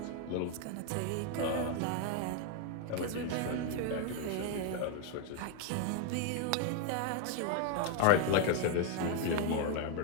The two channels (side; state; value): both; different; correlation 0.01